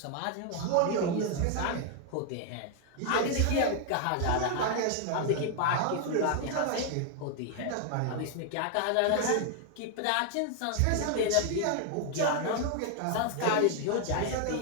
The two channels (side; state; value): both; different; correlation 0.00